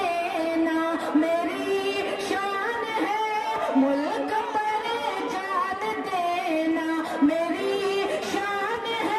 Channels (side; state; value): both; identical; correlation 1.00